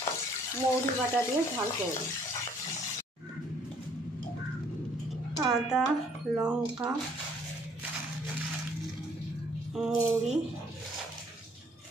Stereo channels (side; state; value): both; normal; correlation 0.62